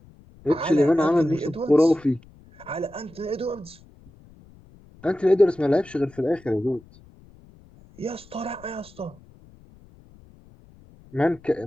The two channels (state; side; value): noise; left; rumble, 25 dB below the sound